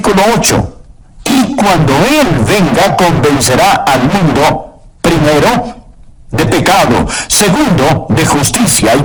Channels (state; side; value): identical; both; correlation 1.00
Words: 8. Y cuando Él venga, convencerá al mundo, primero, de pecado, segundo, de justicia y